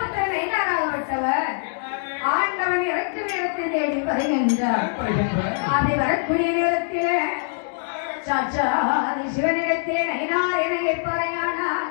நைனாராகப்பட்டவர் ஆண்டவன் இறக்கும் இடத்தை தேடி வருகின்றார். அப்படி வரக்கூடிய நேரத்திலே சாச்சா சிவனிடத்திலே நைனார் என கேட்பாரையானா,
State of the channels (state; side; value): silent; right; digital silence